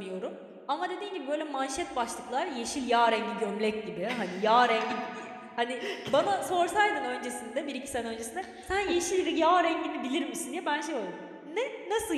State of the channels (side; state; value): both; identical; correlation 1.00